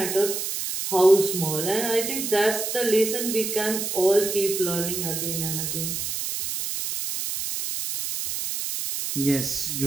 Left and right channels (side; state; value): right; noise; hiss, 3 dB below the sound